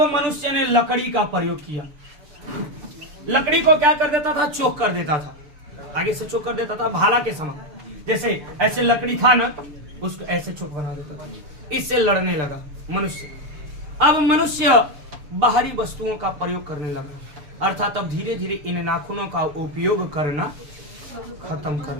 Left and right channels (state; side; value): late; left; 6.9 ms